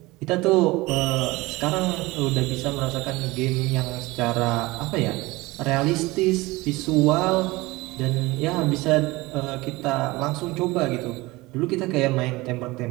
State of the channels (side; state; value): left; quieter; 21.2 dB